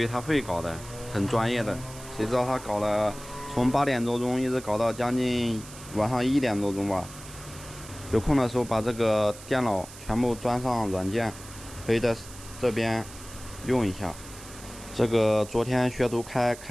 他会搞的，很专业的，谁知道他搞了，从8点多钟一直搞到将近晚上1点多钟吧。有空的时候把这个电脑全部装上软件，可以在这边用一下。这个昨天学徒开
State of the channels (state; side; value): noise; right; hiss, 16 dB below the sound